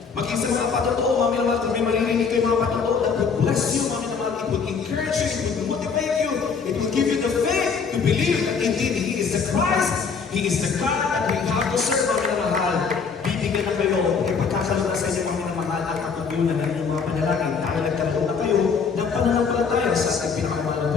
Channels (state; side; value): quieter; right; 5.6 dB